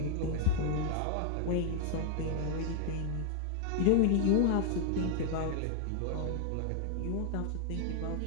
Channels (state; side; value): different; both; correlation 0.00